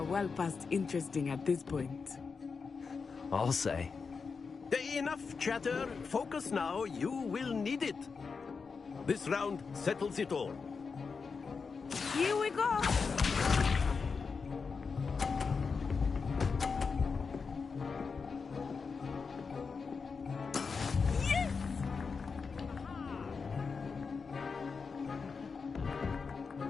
well past interesting at this point. I'll say. Enough chatter. Focus now. You will need it. This round settles it all. Here we go.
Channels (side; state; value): right; quieter; 5.1 dB